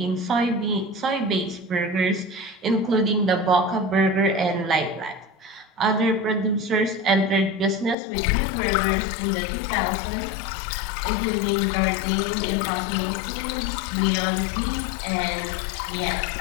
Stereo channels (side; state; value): right; drops out; at 8.0 s